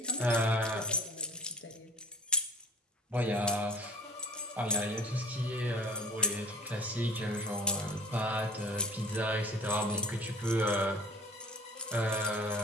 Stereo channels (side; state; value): both; normal; correlation 0.43